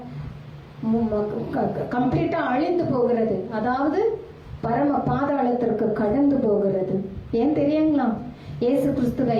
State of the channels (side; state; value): both; identical; correlation 1.00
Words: கம்ப்ளீட்டா அழிந்து போகிறது, அதாவது பரம பாதாளத்திற்கு கடந்து போகிறது. ஏன் தெரியுங்களா? இயேசு கிறிஸ்துவை